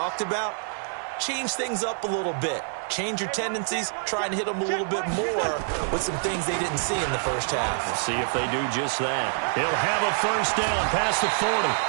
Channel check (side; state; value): left; silent; 61 dB below the other